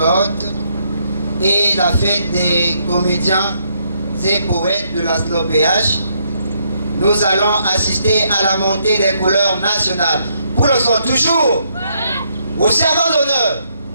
et la fête des comédiens et poètes de la SLOPH, nous allons assister à la montée des couleurs nationales. Pour le son, toujours au servant d'honneur,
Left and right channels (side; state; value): both; inverted; correlation -0.74